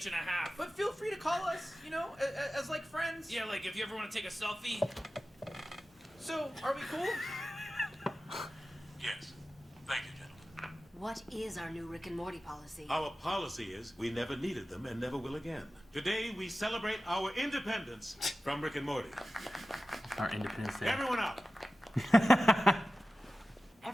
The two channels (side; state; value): both; normal; correlation 0.95